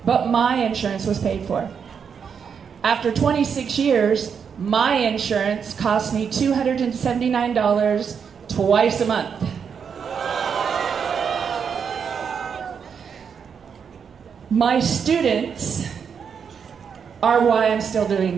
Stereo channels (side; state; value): left; quieter; 6.8 dB